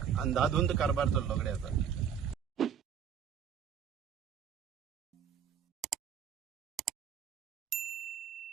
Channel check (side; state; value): left; quieter; 8.1 dB